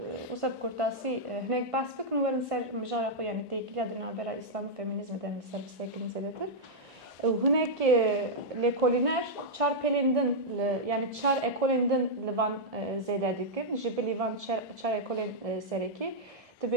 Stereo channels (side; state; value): both; normal; correlation -0.06